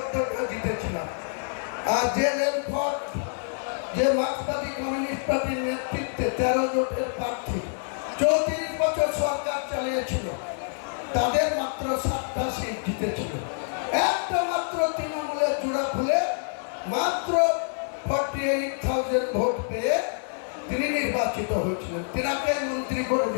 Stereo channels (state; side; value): silent; right; digital silence